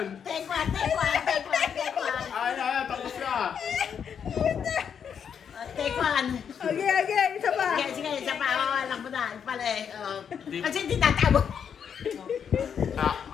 Take one. Ay, tapos na. Take one. Okay, isa pa. Sige, isa pa. Alam mo na. Pala eh. Kasi hindi tatabo.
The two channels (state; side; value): quieter; right; 7.6 dB